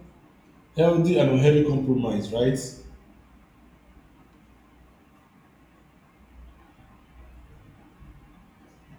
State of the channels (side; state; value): both; identical; correlation 1.00